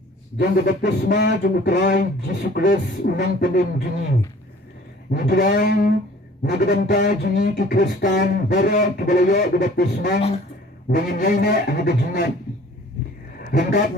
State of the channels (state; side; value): normal; both; correlation 0.51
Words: jang baptisma jang utrai Yesus Kristus unang penim jini. Nidrai nagadanta jini ki Kristan bara kibalayo baptisma dengan yaina hagajingat. Lengkap